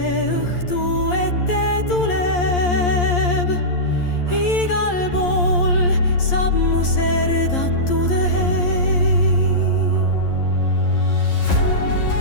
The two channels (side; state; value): right; late; 11 ms